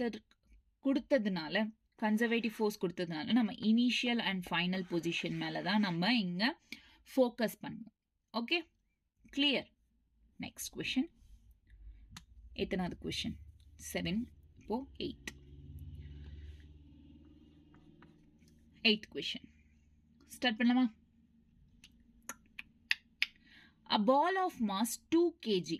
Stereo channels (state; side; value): identical; both; correlation 1.00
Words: கொடுத்ததுனால கன்சர்வேட்டிவ் ஃபோர்ஸ் கொடுத்ததுனால நம்ம இனிஷியல் அண்ட் ஃபைனல் பொசிஷன் மேலே தான் நம்ம இங்கே ஃபோக்கஸ் பண்ணுவோம். Okay clear? Next question. எத்தனாவது கொஷின்? 7. இப்போ 8th கொஷின் ஸ்டார்ட் பண்ணலாமா? A ball of mass 2 kg